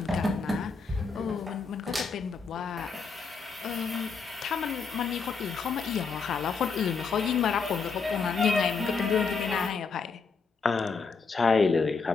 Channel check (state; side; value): quieter; right; 4.9 dB